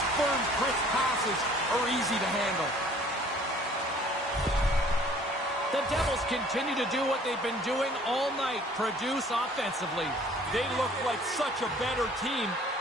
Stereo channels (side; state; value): both; normal; correlation 0.54